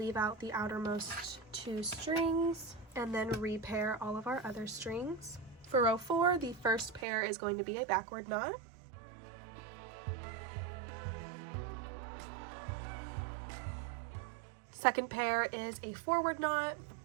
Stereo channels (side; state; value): left; drops out; at 7.1 s